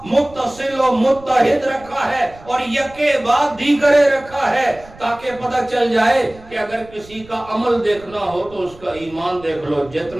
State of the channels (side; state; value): right; noise; rumble, 22 dB below the sound